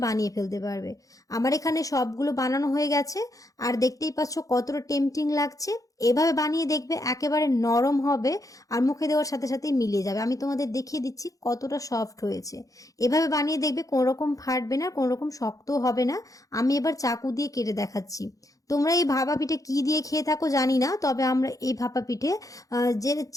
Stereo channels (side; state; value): right; late; 0.17 ms